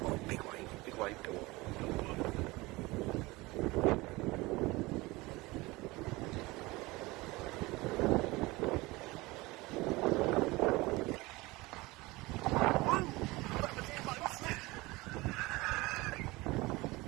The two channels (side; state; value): left; quieter; 21.8 dB